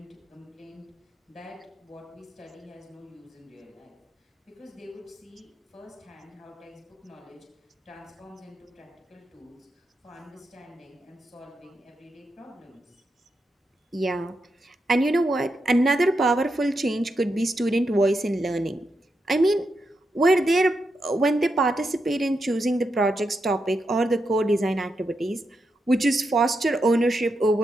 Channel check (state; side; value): normal; both; correlation 0.85